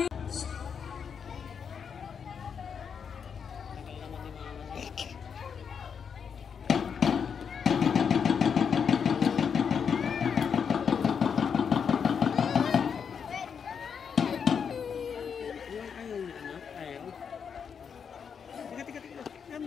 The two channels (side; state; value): right; quieter; 6.8 dB